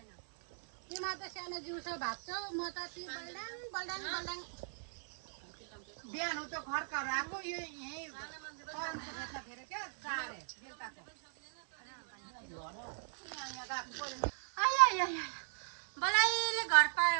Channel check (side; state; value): left; silent; 52 dB below the other